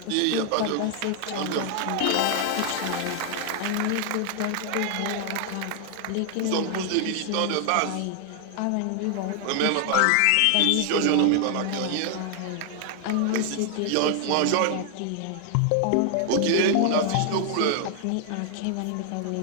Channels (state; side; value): different; both; correlation 0.00